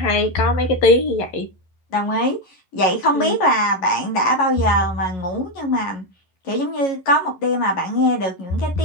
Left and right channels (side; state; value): right; late; 11 ms